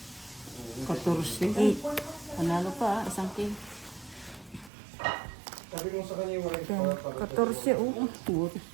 14. 8. Panalo pa, isang king. Sabi ko sa kanya yung wife 10, 14, oh.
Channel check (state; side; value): drops out; left; at 4.7 s